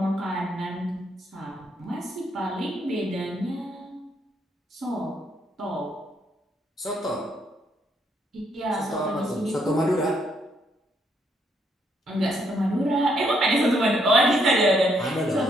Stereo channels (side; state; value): both; normal; correlation 0.73